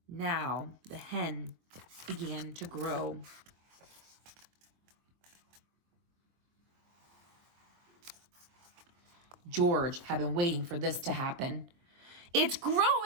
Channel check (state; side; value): late; left; 23 ms